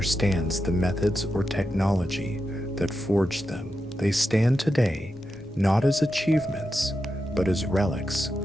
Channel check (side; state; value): both; normal; correlation 0.88